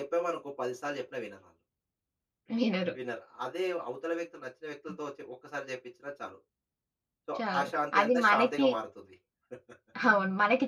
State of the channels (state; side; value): identical; both; correlation 1.00